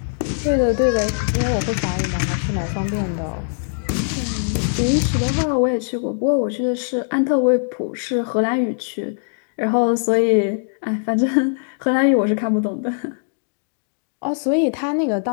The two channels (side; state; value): right; silent; digital silence